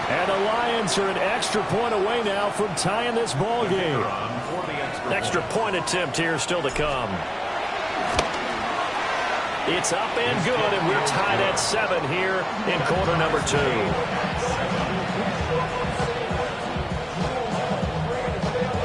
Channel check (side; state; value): both; identical; correlation 1.00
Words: And the Lions are an extra point away now from tying this ball game. Extra point attempt here still to come. It's up and good, and we're tied at 7 here in quarter number 2.